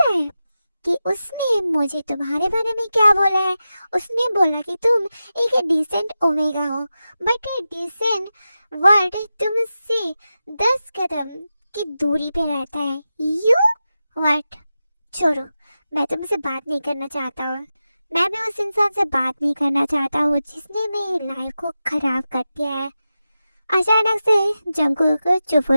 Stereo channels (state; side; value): inverted; both; correlation -0.92